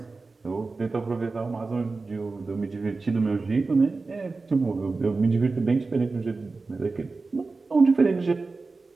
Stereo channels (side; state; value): left; quieter; 3.9 dB